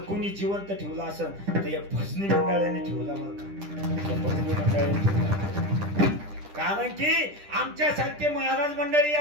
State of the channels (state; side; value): late; left; 10 ms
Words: जिवंत ठेवला असेल तर या भजनी मंडळाने ठेवला. भजनी मंडळाने ठेवला, कारण की आमच्यासारखे महाराज मंडळी